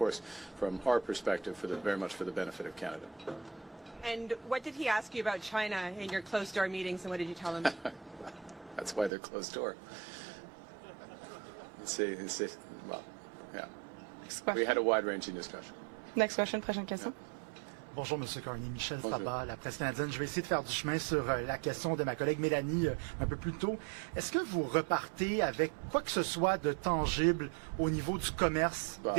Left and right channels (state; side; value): drops out; left; at 9.1 s